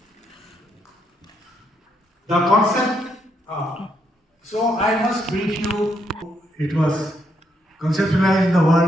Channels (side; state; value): both; normal; correlation 0.76